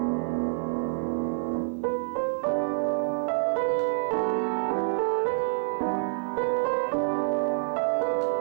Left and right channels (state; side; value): silent; left; 60 dB below the other